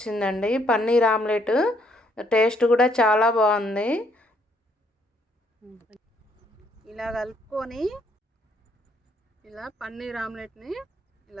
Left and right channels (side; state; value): both; normal; correlation 0.69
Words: పన్నీర్ ఆమ్లెట్ టేస్ట్ కూడా చాలా బాగుంది. ఇలా కలుపుకొని ఇలా పన్నీర్ ఆమ్లెట్ని